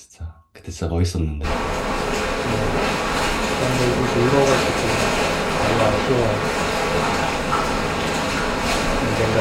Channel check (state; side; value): identical; both; correlation 1.00